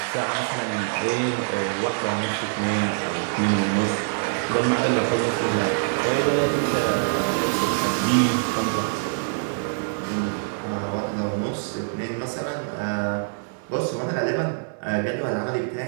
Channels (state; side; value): silent; left; digital silence